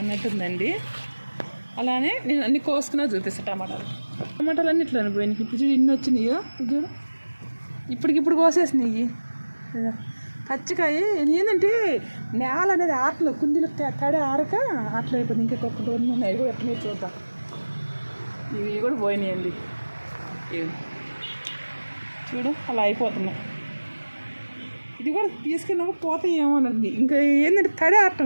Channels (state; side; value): inverted; both; correlation -1.00